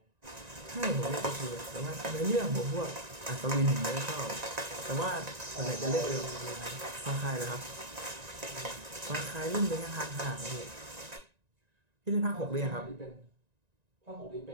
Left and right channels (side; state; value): left; late; 1.9 ms